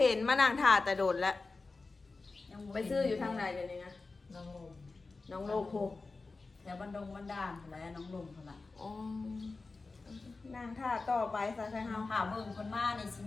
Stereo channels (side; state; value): right; quieter; 3.8 dB